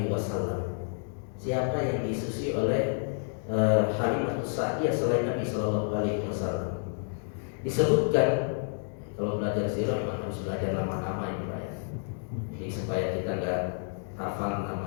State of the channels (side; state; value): right; silent; 58 dB below the other